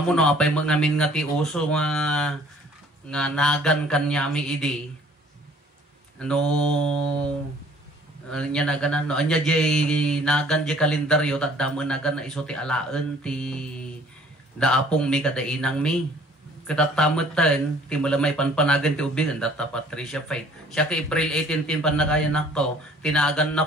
mo no apay ngamin nga ti uso nga nagan kanyami idi. Ano Nya naganan no anya jay nagan jay kalendaryo tadamo nagan na iso ti alaan ti daapong mi kada inang mi katatamatan ti malamay panpanagan ti ubing data Patricia Faith siya ka April 18 tin panakayan nako tinagan na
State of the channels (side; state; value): both; normal; correlation 0.55